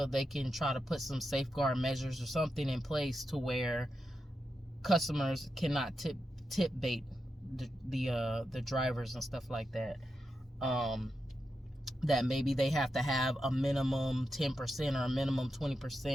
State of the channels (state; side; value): normal; both; correlation 0.88